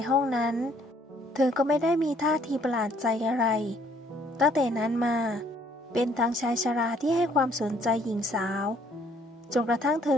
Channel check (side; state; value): both; normal; correlation 0.63